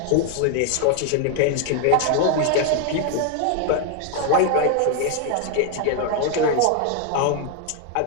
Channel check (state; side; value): different; both; correlation 0.00